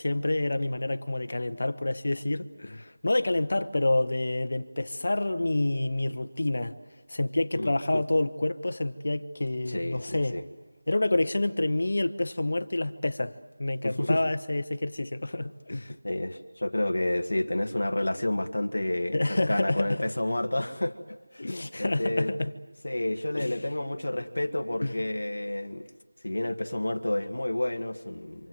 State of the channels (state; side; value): inverted; both; correlation -1.00